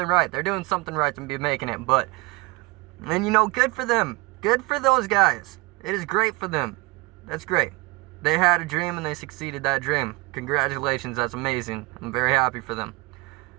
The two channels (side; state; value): left; quieter; 24.7 dB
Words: right. They're doing something right to be making it, but, and you know, good for them. Good for those guys. It is great for them. That's great. They had a dream and they succeeded that dream. Congratulations, that's amazing. I'm very happy for them.